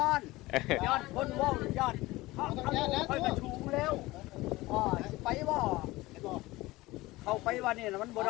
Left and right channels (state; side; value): quieter; right; 19.6 dB